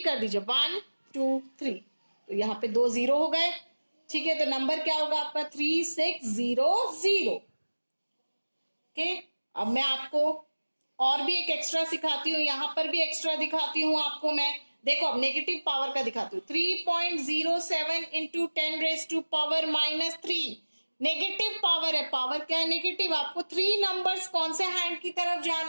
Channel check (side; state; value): both; inverted; correlation -1.00